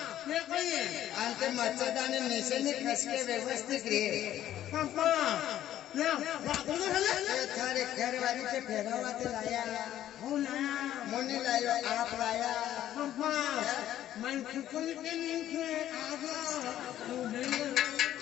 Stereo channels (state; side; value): quieter; right; 12.2 dB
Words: अंते मच्छरदानी नीचे ने खस के व्यवस्थित रे थारे घर वाली के फेरवा ते लाया मोनी लायो आप लाया मैं खुद के नीचे आजा